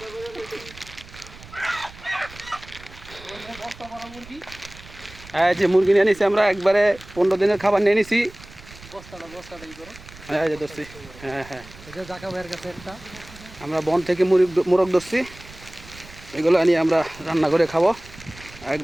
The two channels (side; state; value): right; noise; rumble, 19 dB below the sound